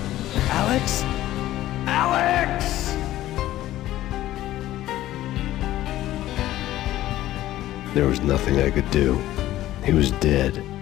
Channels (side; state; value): right; quieter; 14.5 dB